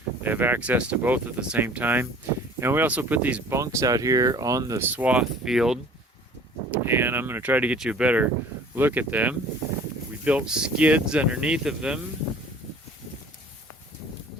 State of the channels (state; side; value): normal; both; correlation 0.49